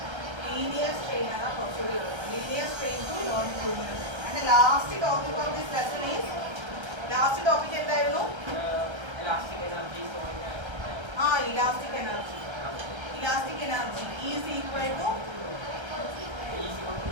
Linear strain ആണ് കുറച്ചുകൂടി ഉള്ളത്. Linear strain to longitudinal. And last topic of this lesson is last topic എന്തായിരുന്നു? Elastic energy. Elastic energy is equal to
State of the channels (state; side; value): late; left; 1.3 ms